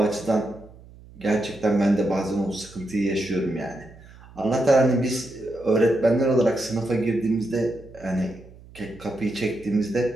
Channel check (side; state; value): right; noise; hum, 21 dB below the sound